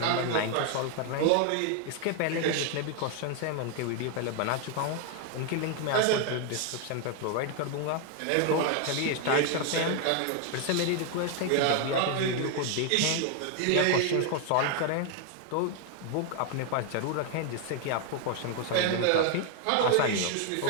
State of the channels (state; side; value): different; both; correlation 0.01